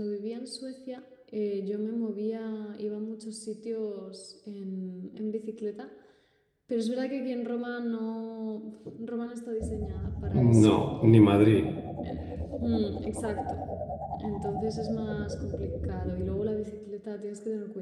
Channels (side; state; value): both; identical; correlation 1.00